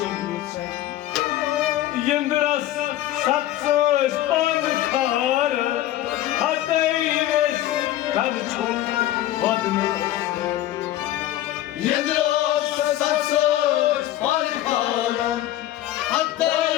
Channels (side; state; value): right; quieter; 13.8 dB